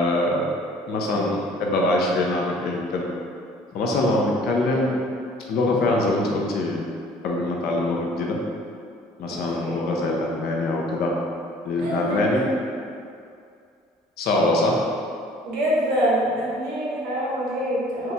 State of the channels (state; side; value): normal; both; correlation 0.53